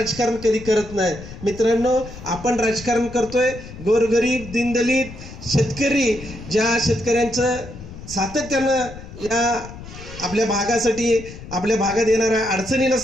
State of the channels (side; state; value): left; noise; rumble, 14 dB below the sound